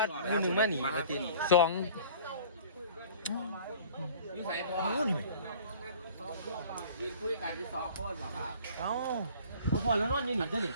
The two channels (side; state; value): both; inverted; correlation -0.48